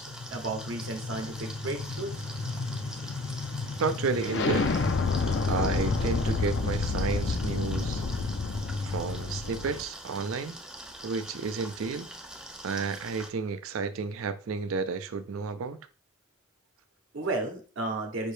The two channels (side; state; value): both; normal; correlation 0.41